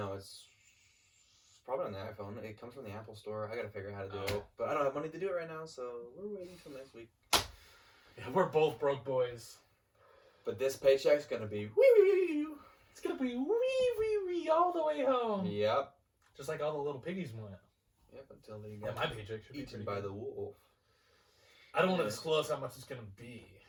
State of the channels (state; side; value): identical; both; correlation 1.00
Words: it's probably on the iPhone. It comes from the Apple Store. I gotta figure out how to do Oh. it. But I don't have money to do it right now, so we're waiting till next week. Yeah, we're both broke boys. But this paycheck's gonna be wee. It's gonna be wee all the way home. Yep. Just like all the little piggies went. Yep, until they Yeah, get my paycheck should be eaten pretty by good. the wolf. I don't want to Yeah. disclose how much it's going to be,